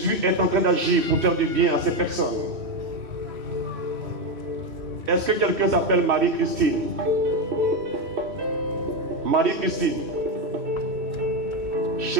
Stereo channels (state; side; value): late; left; 3.1 ms